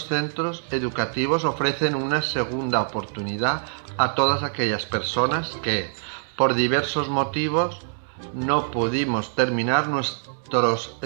centros educativos ofrecen una segunda oportunidad a todas aquellas personas que, por diversos motivos, no pudimos terminar nuestros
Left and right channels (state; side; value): silent; left; digital silence